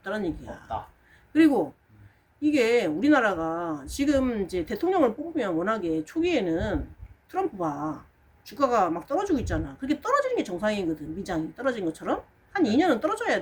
얘기야. 없다. 그리고 이게 우리나라가 지금 이제 대통령을 뽑으면 워낙에 초기에는 트럼프가 주가가 막 떨어지고 있잖아. 그게 떨어지는 게 정상이거든. 미장이 떨어진 것처럼 한 2년은 떨어져야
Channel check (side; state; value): both; identical; correlation 1.00